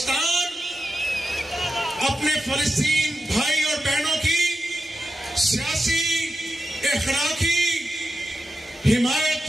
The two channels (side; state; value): both; normal; correlation 0.90